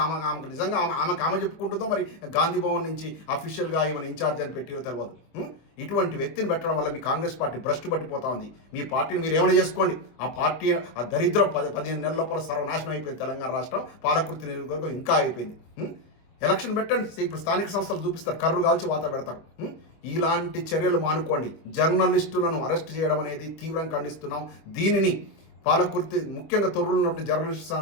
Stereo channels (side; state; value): right; late; 24 ms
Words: ఆమెకు నిజంగా ఆమె చెప్పుకుంటుందో, మరి గాంధీ భవన్ నుంచి అఫీషియల్గా ఈమెను ఇన్ఛార్జ్ అని పెట్టిరో తెలియదు. ఇటువంటి వ్యక్తిని పెట్టడం వల్ల మీ కాంగ్రెస్ పార్టీ భ్రష్టు పట్టిపోతా ఉంది. మీ పార్టీని మీరు ఏమైనా చేసుకోండి. ఆ పార్టీ ఆ దరిద్రం 15 నెలల లోపల సర్వనాశనం అయిపోయింది. తెలంగాణ రాష్ట్రం పాలకుర్తి నియోజకవర్గం ఇంకా అయిపోయింది. ఎలక్షన్ పెట్టండి, ఇప్పుడు స్థానిక సంస్థలు చూపిస్తారు, కర్రు కాల్చి వాత పెడతారు. ఇలాంటి చర్యలు మానుకోండి. జర్నలిస్టులను అరెస్ట్ చేయడం అనేది తీవ్రంగా ఖండిస్తున్నాం. దీనిని పాలకుర్తి ముఖ్యంగా తొర్రులు ఉన్నటువంటి జర్నలిస్ట్